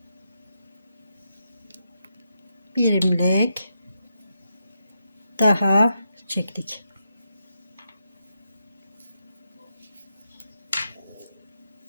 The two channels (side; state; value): both; inverted; correlation -0.84